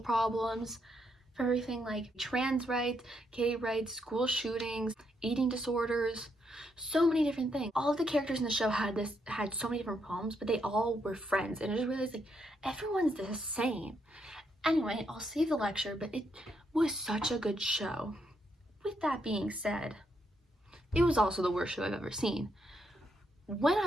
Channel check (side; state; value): both; normal; correlation 0.77